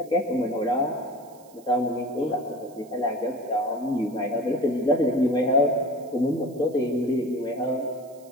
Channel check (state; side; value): noise; right; hiss, 27 dB below the sound